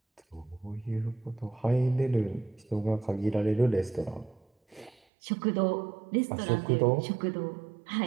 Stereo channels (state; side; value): drops out; left; at 5.0 s